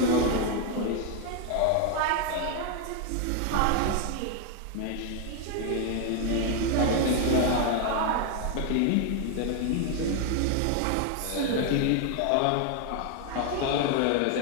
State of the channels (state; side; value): different; both; correlation 0.01